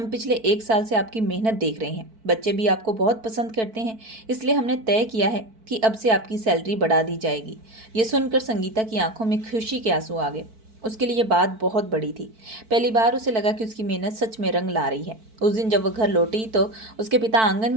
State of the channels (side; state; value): left; late; 4.5 ms